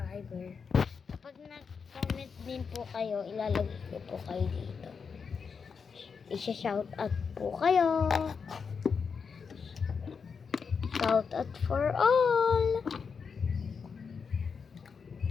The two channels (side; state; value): right; quieter; 5.8 dB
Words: Kapag nag-comment din po kayo, ilalagay ko po kayo dito. Isha-shout out po kayo. Shout out for all.